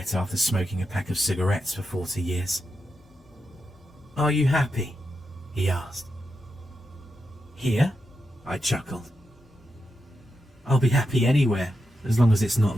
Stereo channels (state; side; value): normal; both; correlation 0.87